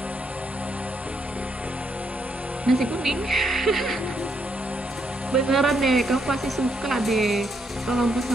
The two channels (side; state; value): both; normal; correlation 0.76